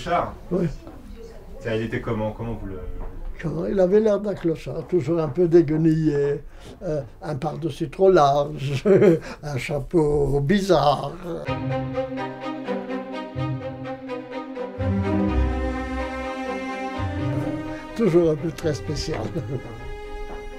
Oui. Il était comment? Comment vous le... Il avait l'air d'un clochard, toujours un peu déguenillé, un par-dessus trop large, un chapeau bizarre. Toujours un peu très spécial,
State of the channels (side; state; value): both; identical; correlation 1.00